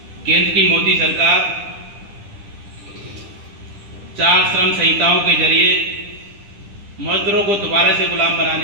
केंद्र की मोदी सरकार 4 श्रम संहिताओं के जरिए मजदूरों को दोबारा से गुलाम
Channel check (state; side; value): late; left; 10 ms